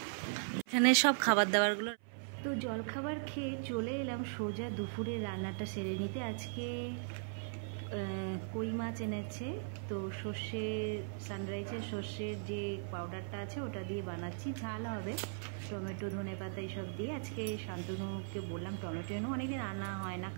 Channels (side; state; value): left; silent; 52 dB below the other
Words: এখানে সব খাবার দাবারগুলো। তো জলখাবার খেয়ে চলে এলাম সোজা দুপুরে রান্নাটা সেরে নিতে। আজকে কই মাছ এনেছে, তো সর্ষে সানরাইজের সর্ষের যে পাউডারটা আছে ওটা দিয়ে বানাচ্ছি। ঝাল হবে, টমেটো ধনে পাতা এইসব দিয়ে। আজকে শান্তনুকে বললাম টমেটো এনো, অনেকদিন আনা হয় না,